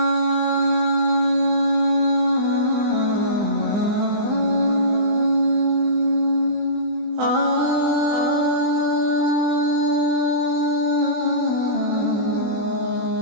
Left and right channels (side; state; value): left; late; 20 ms